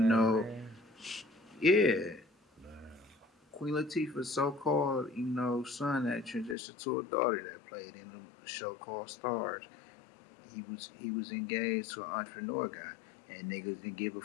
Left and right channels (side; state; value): right; drops out; at 6.6 s